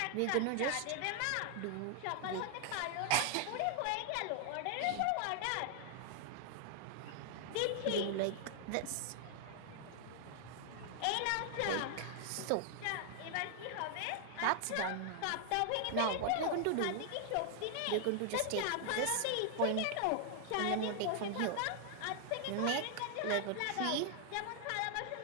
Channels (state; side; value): different; both; correlation 0.00